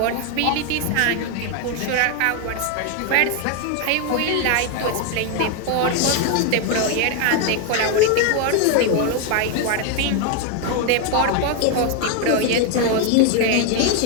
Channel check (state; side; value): different; both; correlation 0.01